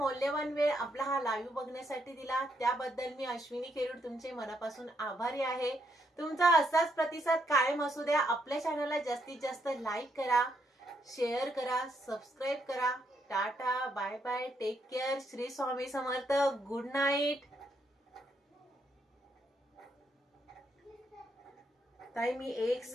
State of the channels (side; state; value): both; normal; correlation 0.76